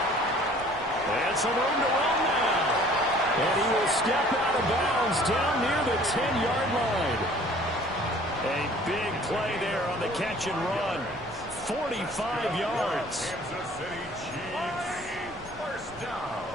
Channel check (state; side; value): noise; left; rumble, 19 dB below the sound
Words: And some room to run now. And he will step out of bounds down near the 10-yard line. A big play there on the catch and run. 45 yards. Kansas City Chiefs. First down.